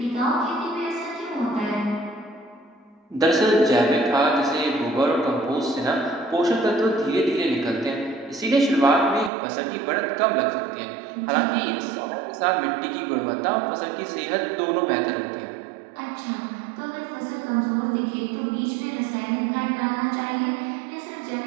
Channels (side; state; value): left; drops out; at 9.3 s